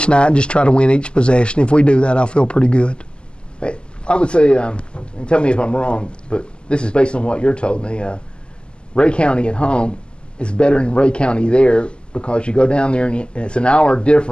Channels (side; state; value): right; late; 0.050 ms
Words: night and just try to win each possession. If we do that, I feel pretty good. I would say, and tell me if I'm wrong, but this is based on what you're told me, Ray County at home is better than Ray County there because you go down there and it's an hour